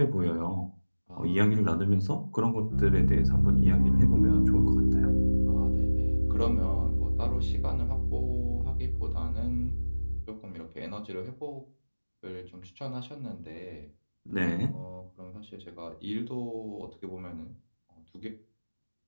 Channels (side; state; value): both; inverted; correlation -1.00